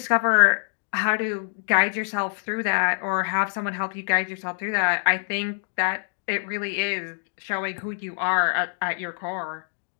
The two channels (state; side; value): silent; right; digital silence